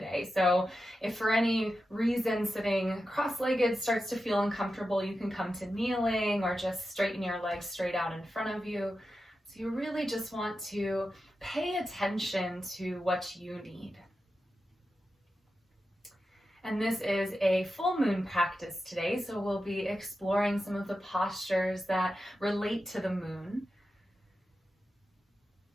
So if for any reason sitting cross-legged starts to feel uncomfortable, you can come to kneeling or just straighten your legs straight out in front of you. So you really just want to pay attention to what you need. And this is a full moon practice today, so we'll be exploring some of the postures that relate to the moon.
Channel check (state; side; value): normal; both; correlation 0.91